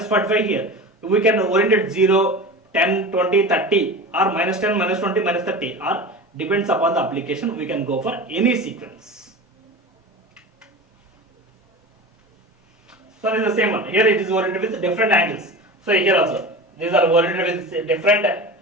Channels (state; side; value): normal; both; correlation 0.31